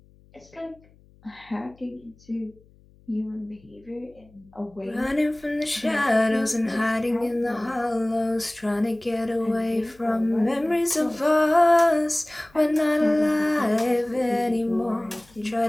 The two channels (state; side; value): noise; left; hum, 29 dB below the sound